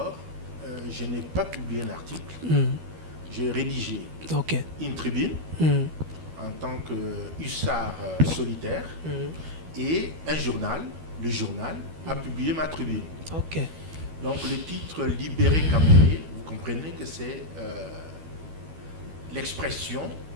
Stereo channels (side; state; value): left; late; 12 ms